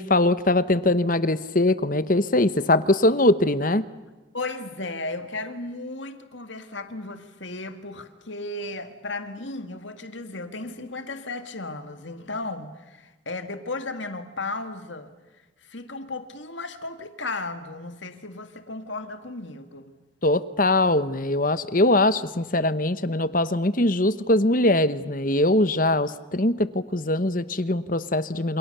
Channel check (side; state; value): both; normal; correlation 0.20